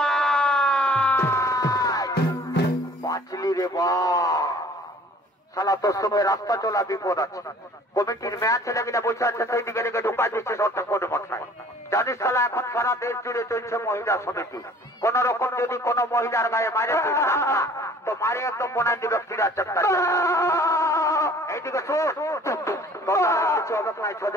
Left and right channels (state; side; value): normal; both; correlation 0.52